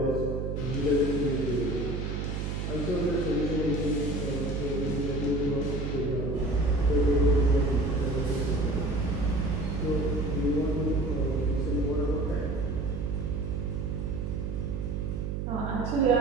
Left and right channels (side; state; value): right; noise; hum, 2 dB below the sound